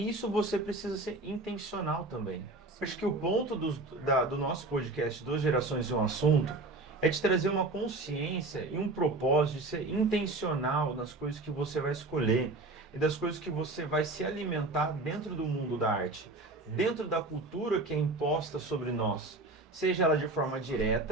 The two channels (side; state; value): left; quieter; 3.0 dB